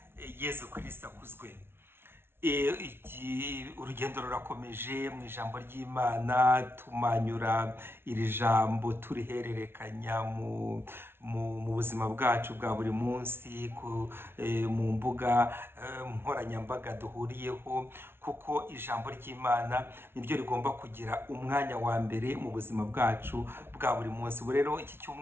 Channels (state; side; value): late; left; 0.12 ms